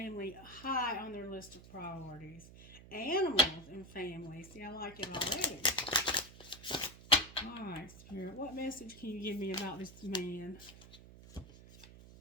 high on their list of priorities. Animals and family. See, I like it already. Alright, Spirit, what message can you give me about this man?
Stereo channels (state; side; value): noise; right; hum, 18 dB below the sound